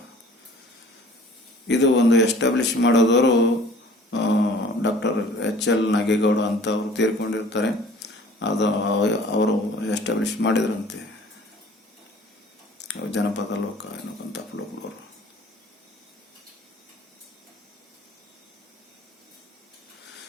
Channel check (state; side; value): normal; both; correlation 0.49